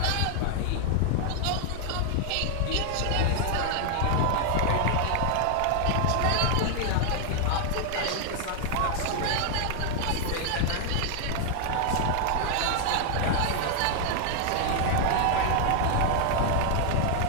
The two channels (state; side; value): different; both; correlation 0.00